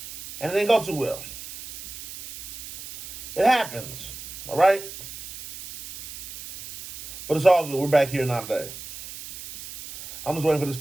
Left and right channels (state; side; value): noise; right; hiss, 13 dB below the sound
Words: and it didn't go too well. It happens. All right? But it's all good. We're back here now today. I'm just waiting for this